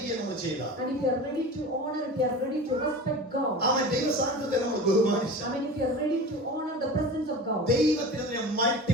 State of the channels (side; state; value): both; normal; correlation 0.34